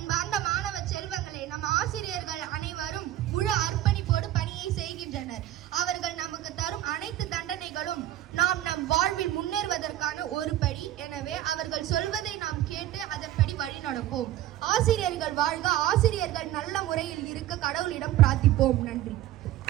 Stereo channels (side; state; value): left; quieter; 13.4 dB